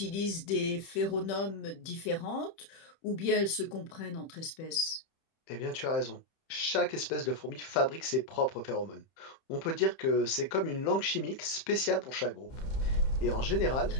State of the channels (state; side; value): late; right; 30 ms